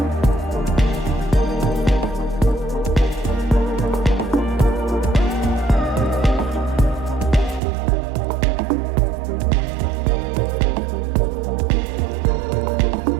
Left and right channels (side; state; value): left; drops out; at 7.6 s